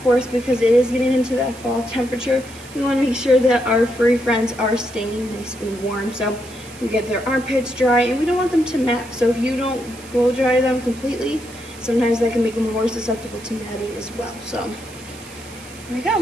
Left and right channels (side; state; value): right; noise; hiss, 19 dB below the sound